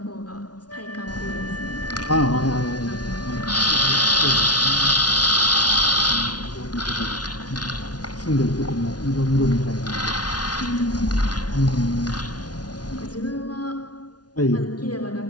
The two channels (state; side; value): late; right; 0.69 ms